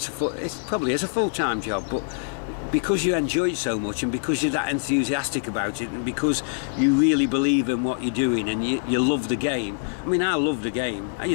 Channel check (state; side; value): silent; right; digital silence